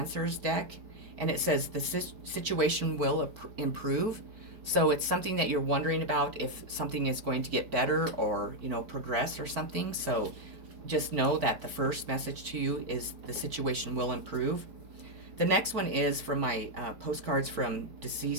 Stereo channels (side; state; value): left; late; 4.5 ms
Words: deck, and it says the situation will improve. So it's something that you're wondering about, if something is going to get better or, progress or something. So just know that the first message to you is the situation will improve. The next one is from my postcards from